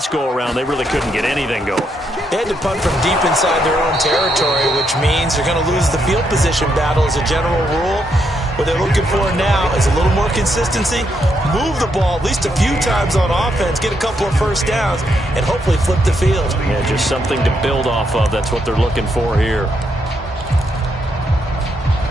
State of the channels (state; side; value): normal; both; correlation 0.78